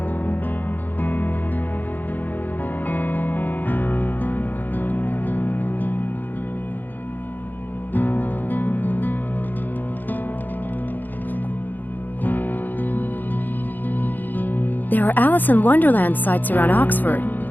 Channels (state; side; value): late; right; 0.086 ms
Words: There are Alice in Wonderland sites around Oxford.